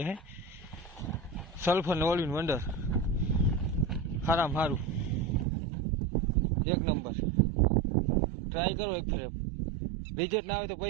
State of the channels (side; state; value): left; drops out; at 5.5 s